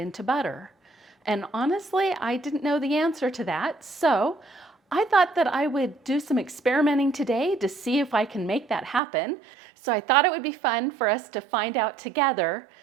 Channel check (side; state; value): left; drops out; at 9.0 s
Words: butter. And honestly, I didn't know the answer to that. So I thought that I would do some experimenting today to see if I can make that happen. So I thought it would be fun for us to find out together